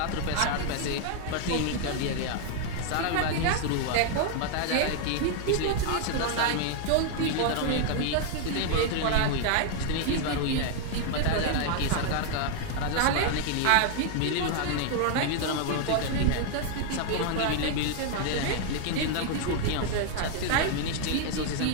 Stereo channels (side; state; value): both; different; correlation 0.00